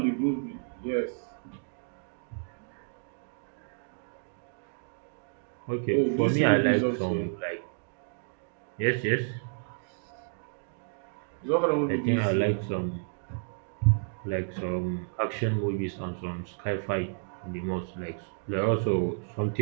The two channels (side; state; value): left; silent; digital silence